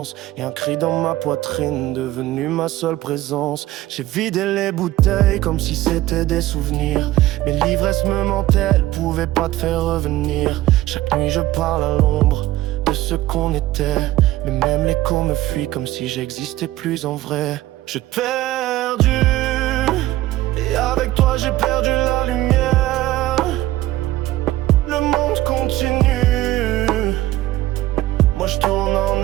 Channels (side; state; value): left; quieter; 16.1 dB